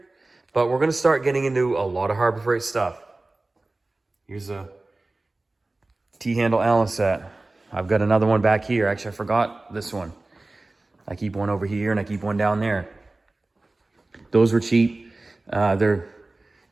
but we're going to start getting into a lot of Harbor Freight stuff. Here's a T-handle Allen set. I've got another one back here. Actually, I forgot this one. I keep one over here and I keep one down there. Those were cheap. They're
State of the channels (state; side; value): quieter; left; 3.0 dB